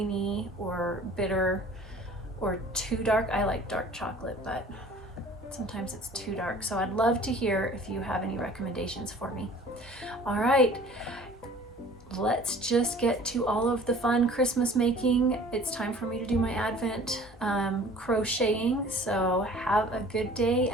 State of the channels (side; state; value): both; normal; correlation 0.48